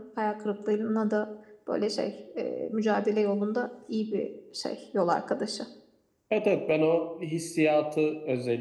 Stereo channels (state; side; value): identical; both; correlation 1.00